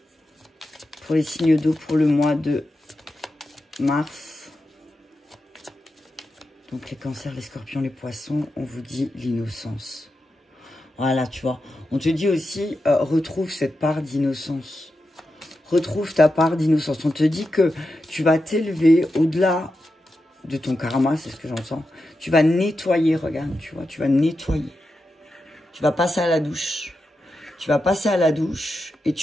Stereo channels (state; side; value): normal; both; correlation 0.89